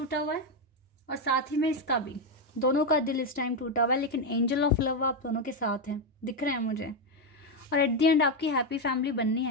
हुआ है और साथ ही में इसका भी, दोनों का दिल इस टाइम टूटा हुआ है, लेकिन एंजल ऑफ लव आप दोनों के साथ हैं, दिख रहे हैं मुझे। और एट द एंड आपकी हैप्पी फैमिली बननी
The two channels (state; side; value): normal; both; correlation 0.06